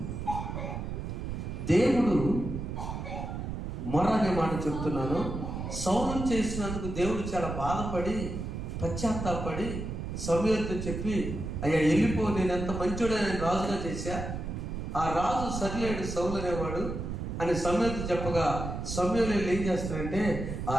దేవుడు మొర అనే మాట చెప్తున్నాను. సౌలు చేసినందుకు దేవుడు చాలా బాధపడి పశ్చాత్తాపడి సమూయేలుతో చెప్పి, అయ్యా వెళ్ళిపో, నేను ఎంత మంచోడే, నేను రాజుగా చేశా, ఆ రాజు సరిలేడు సౌలు అనేవాడు అని సమూయేలుతో చెప్పగా, సమూయేలు ఏం చేస్తాడంటే ఆ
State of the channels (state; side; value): noise; right; rumble, 5 dB below the sound